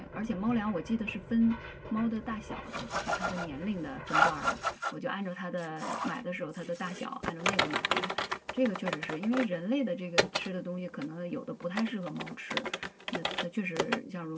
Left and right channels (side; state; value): both; identical; correlation 1.00